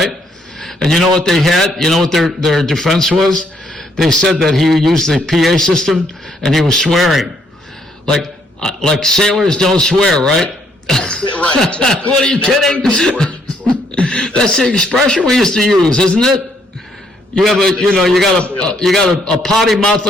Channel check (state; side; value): normal; both; correlation 0.70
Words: And you know what they had? You know what their defense was? They said that he used the PA system and he was swearing. Like sailors don't swear, right? Right. Exactly. What, are you kidding? That's the expression we used to use, isn't it? You have you got a potty mouth